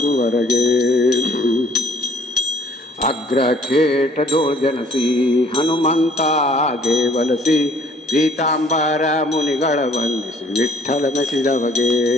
ಅಗ್ರಖೇಟದೋಳ್ ಜನಸಿ ಹನುಮಂತಾಗೆ ವಲಸಿ, ಪೀತಾಂಬರ ಮುನಿಗಳ ವಂದಿಸಿ ವಿಠ್ಠಲ ಮೆಸಿದವಗೆ.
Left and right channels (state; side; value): normal; both; correlation 0.58